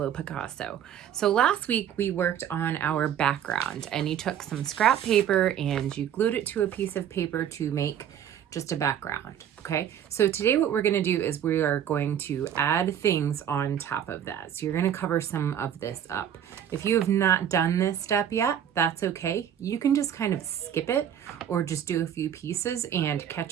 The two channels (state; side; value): quieter; left; 9.6 dB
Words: Picasso. So last week we worked on our background, and you took some scrap paper and you glued it to a piece of paper to make just a background. Okay, so today what we're going to do is we are going to add things on top of that. So you're going to cover some of this up. If you have not done this step yet, that's okay. You can just kind of skip it or just do a few pieces and